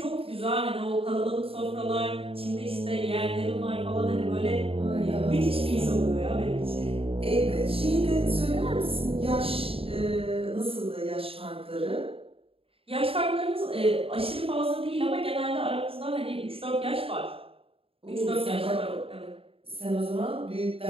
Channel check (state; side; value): late; left; 0.27 ms